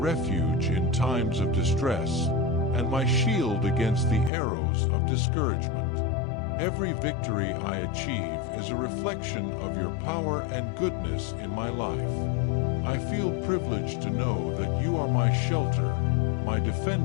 in times of distress, and my shield against the arrows of discouragement. Every victory I achieve is a reflection of your power and goodness in my life. I feel privileged to know that you are my shelter, my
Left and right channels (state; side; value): drops out; right; at 4.3 s